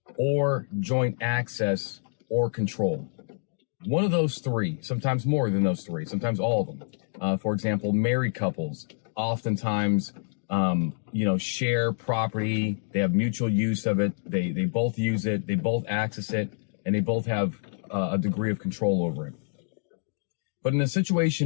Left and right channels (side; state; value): right; silent; digital silence